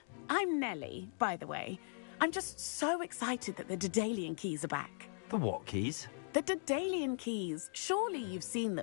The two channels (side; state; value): right; silent; digital silence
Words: Nellie, by the way. I'm just so excited that the Daedalian keys are back. The what keys? The Daedalian keys. Surely you've seen